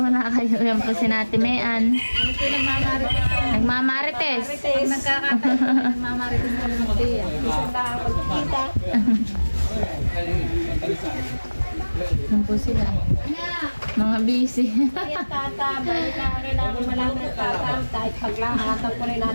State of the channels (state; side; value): inverted; both; correlation -1.00